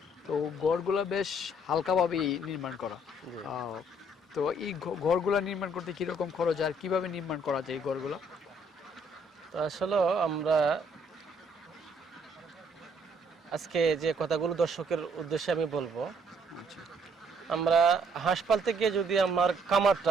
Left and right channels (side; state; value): both; normal; correlation 0.66